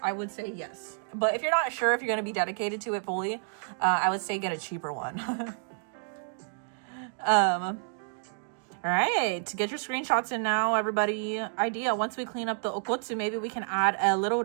I would say yes. But if you're not sure if you're gonna be dedicated to it fully, I would say get a cheaper one. All right, get your screenshots in now, everybody. Idea, once we clean up the okotsu, maybe we can add a little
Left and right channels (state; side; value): silent; left; digital silence